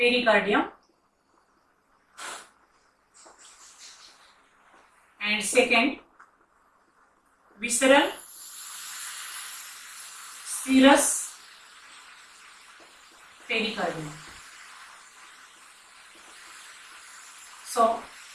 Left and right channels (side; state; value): both; identical; correlation 1.00